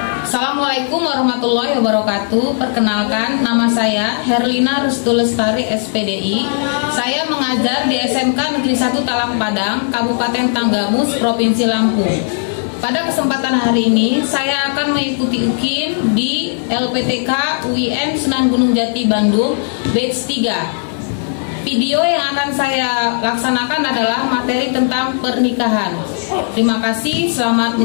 Assalamualaikum warahmatullahi wabarakatuh. Perkenalkan, nama saya Herlina Rustulestari SPDI. Saya mengajar di SMK Negeri 1 Talang Padang, Kabupaten Tanggamus, Provinsi Lampung. Pada kesempatan hari ini, saya akan mengikuti UKIN di LPTK UIN Sunan Gunung Jati Bandung, batch 3. Video yang akan saya laksanakan adalah materi tentang pernikahan. Terima kasih, selamat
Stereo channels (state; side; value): silent; right; digital silence